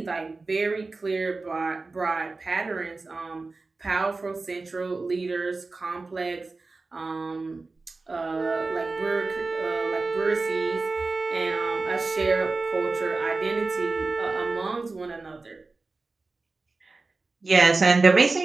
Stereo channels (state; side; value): quieter; left; 3.7 dB